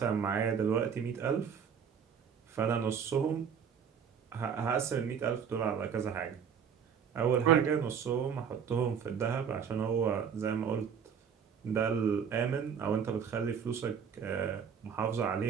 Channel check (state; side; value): quieter; left; 7.2 dB